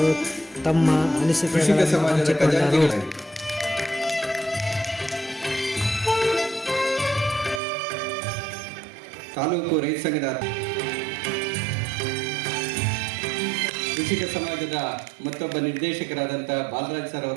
ತಮ್ಮ ಅನಿಸಿಕೆಗಳನ್ನು ಹಂಚಿಕೊಂಡರು. ತಾಲೂಕು ರೈತ ಸಂಘದ ಕೃಷಿಕ ಸಮಾಜದ ಮತ್ತೊಬ್ಬ ನಿರ್ದೇಶಕರಾದಂಥ ಬಾಲರಾಜ್ ಸರ್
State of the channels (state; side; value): drops out; left; at 7.6 s